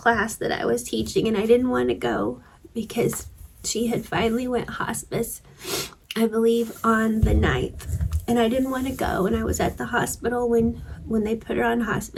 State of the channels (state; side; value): identical; both; correlation 1.00